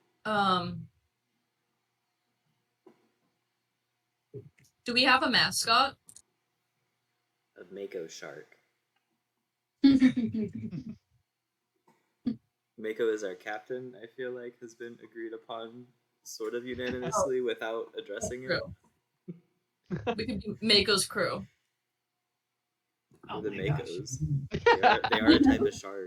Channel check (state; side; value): identical; both; correlation 1.00